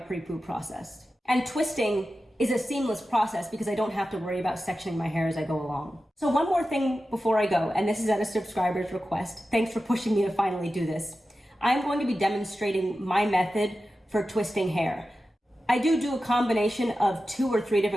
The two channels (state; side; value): normal; both; correlation 0.93